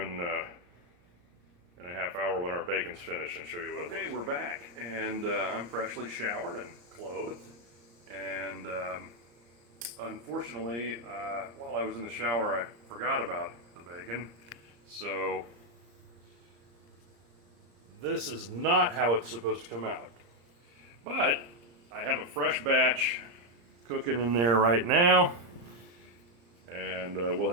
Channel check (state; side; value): late; left; 35 ms